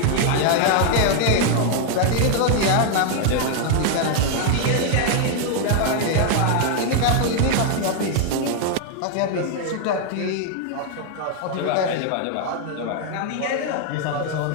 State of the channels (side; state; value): both; different; correlation 0.00